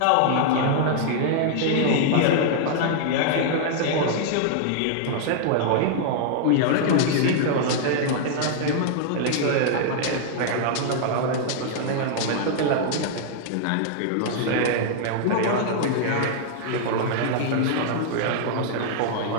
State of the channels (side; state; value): both; different; correlation -0.01